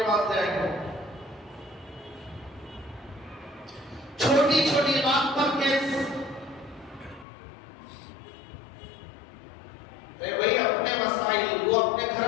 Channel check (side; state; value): right; drops out; at 7.2 s